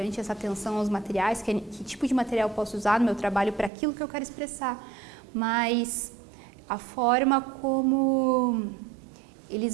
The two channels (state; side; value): drops out; left; at 3.7 s